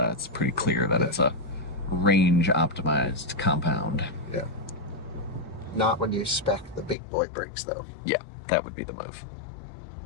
pretty clear that it's a range-optimized compound. Yeah. Not when you spec the big boy brakes, though. Yeah, that would be the move.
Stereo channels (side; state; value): right; drops out; at 7.0 s